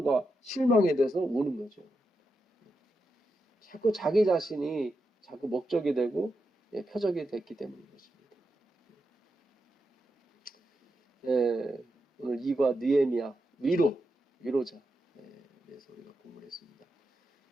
실망에 대해서 우는 거죠. 자꾸 자기 자신이 자꾸 목적이 되고 표적이 됐기 때문인 것입니다. 오늘 이과 느헤미야 위로자 그래서 우리가 공부를 했습니다.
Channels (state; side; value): normal; both; correlation 0.86